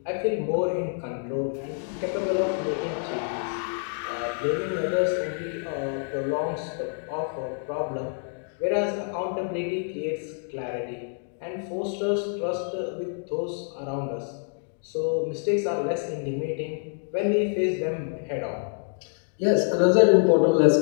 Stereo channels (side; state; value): right; silent; 60 dB below the other